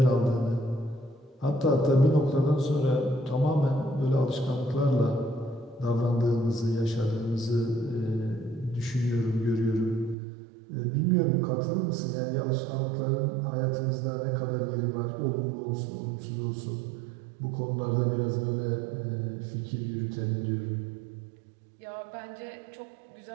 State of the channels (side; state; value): left; drops out; at 10.2 s